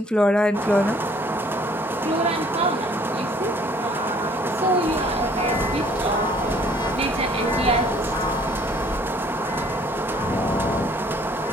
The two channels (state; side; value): normal; both; correlation 0.58